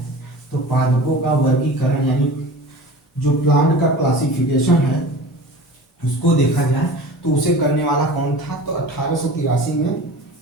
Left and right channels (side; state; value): both; normal; correlation 0.37